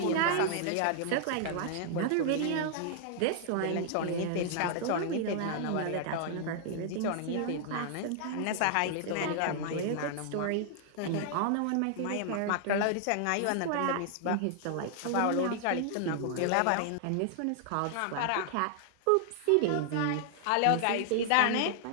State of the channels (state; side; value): different; both; correlation -0.01